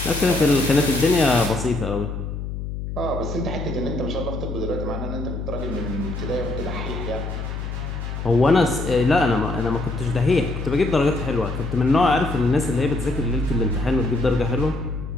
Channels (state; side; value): noise; left; hum, 6 dB below the sound